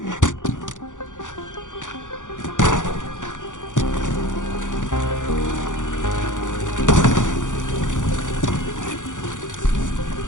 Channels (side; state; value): right; late; 0.87 ms